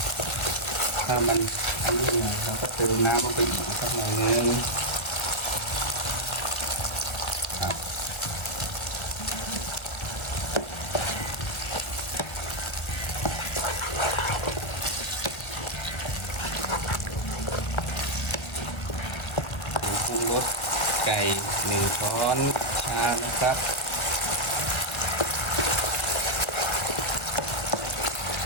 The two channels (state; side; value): late; right; 1.3 ms